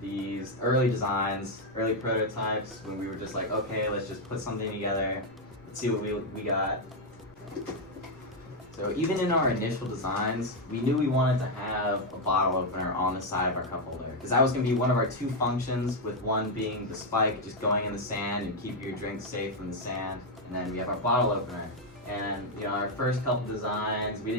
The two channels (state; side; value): normal; both; correlation 0.02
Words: early designs, early prototypes, when we were just like, okay, let's just put something together, let's see what we got. So even in our initial designs, we knew we wanted to have a bottle opener on the side of our cup holder, because that was going to be one of our two functions, with one being the spike just going in the sand and keep your drink safe from the sand, and then we have our bottle opener. And our first couple designs, we